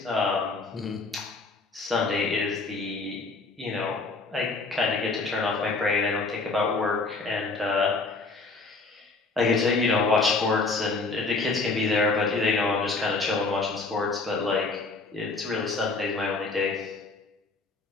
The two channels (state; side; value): quieter; right; 3.8 dB